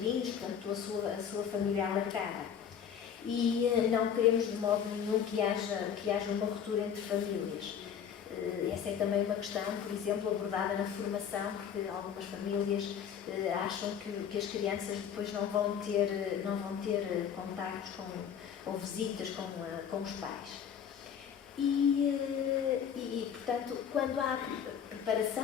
portanto, a sua família alargada. E não queremos de modo nenhum que haja uma ruptura entre famílias. Essa é também uma questão, por exemplo, abordada na formação, porque algumas famílias acham que as crianças depois não vão ter contactos ou visitas com os pais. E, portanto, quando há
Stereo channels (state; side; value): quieter; right; 8.1 dB